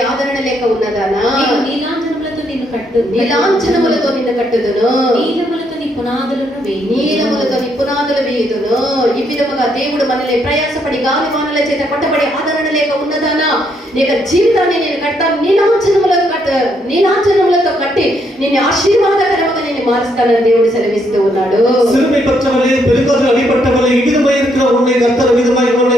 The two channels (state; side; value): normal; both; correlation 0.74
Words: ఆదరణ లేక ఉన్నదానా నీలాంజనములతో నిన్ను కట్టు నీలాంజనములతో నిన్ను కట్టుదును నీలములతో నీ పునాదులను వేయి నీలములతో నీ పునాదులు వేయుదును. ఈ విధముగా దేవుడు మనల్ని ప్రయాసపడి గాలివానల చేత కొట్టబడి ఆదరణ లేక ఉన్నదానా నీ జీవితాన్ని నేను కడతాను, నీలాంజనములతో కట్టి నిన్ను ఆశీర్వాదకరముగా నేను మారుస్తానని దేవుడు సెలవిస్తూ ఉన్నాడు. சிறுமைப்பட்டவளே, பெருங்காற்றில் அடிபட்டவளே, இவ்விதமாய் இருக்கிற உன்னை கர்த்தர் விதமாய்